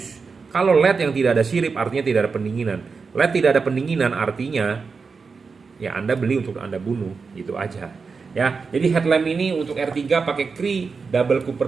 Kalau LED yang tidak ada sirip artinya tidak ada pendinginan. LED tidak ada pendinginan artinya ya Anda beli untuk Anda bunuh, gitu aja Ya, jadi headlamp ini untuk R3 pakai Cree, double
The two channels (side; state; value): left; quieter; 4.9 dB